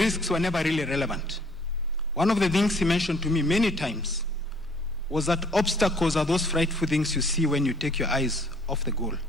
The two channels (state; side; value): normal; both; correlation 0.58